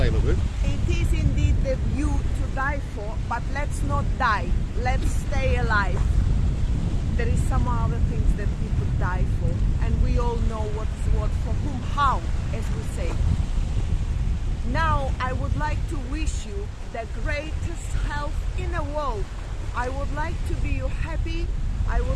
LaBouffe? It is indeed the view to die for, but let's not die. Let's stay alive. There is some other things that we could die for, and we all know what is what, for whom, how, as we say. Now, I would like to wish you the greatest health in the world. I would like to be you happy. I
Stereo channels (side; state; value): both; identical; correlation 1.00